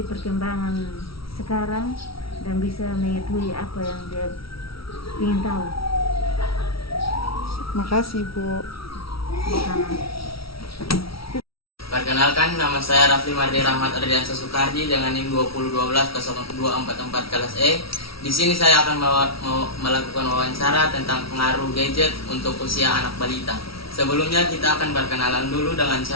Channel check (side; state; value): right; late; 0.75 ms